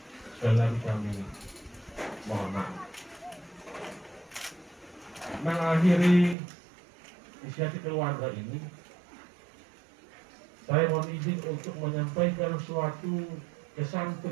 sekali lagi kami mohon maaf. Mengakhiri inisiatif keluarga ini, saya mohon izin untuk menyampaikan suatu kesan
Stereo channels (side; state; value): left; drops out; at 6.4 s